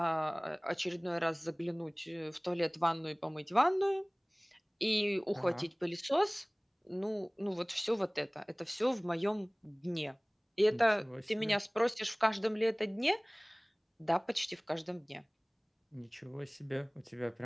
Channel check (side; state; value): both; identical; correlation 1.00